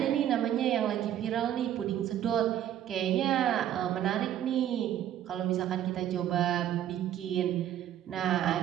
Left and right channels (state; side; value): quieter; left; 11.2 dB